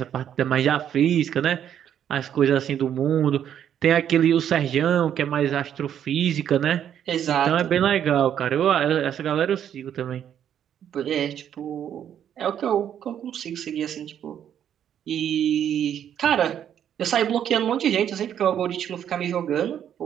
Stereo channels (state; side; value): quieter; left; 9.6 dB